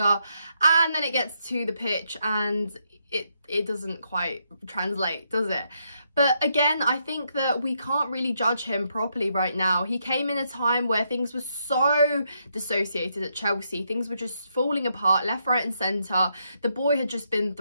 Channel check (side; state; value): both; inverted; correlation -0.78